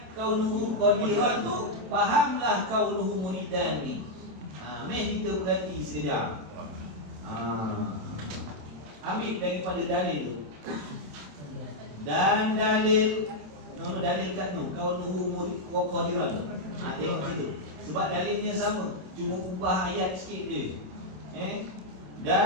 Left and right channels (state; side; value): late; left; 27 ms